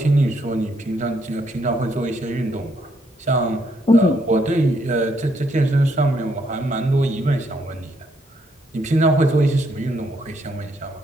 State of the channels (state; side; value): normal; both; correlation 0.73